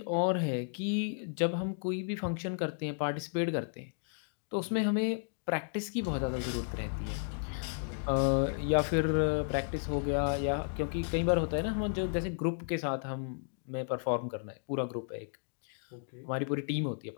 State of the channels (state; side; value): silent; right; digital silence